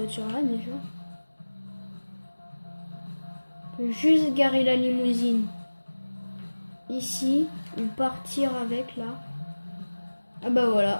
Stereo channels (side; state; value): both; inverted; correlation -1.00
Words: déjà. On peut juste garer la limousine ici ou partir avec là. Ah bah